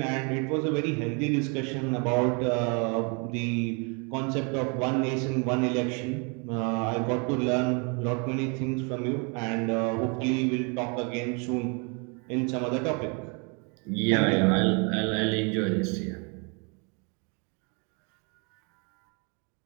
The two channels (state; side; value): quieter; left; 34.1 dB